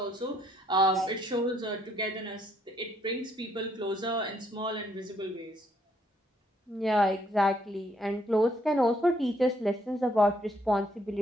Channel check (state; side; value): normal; both; correlation 0.70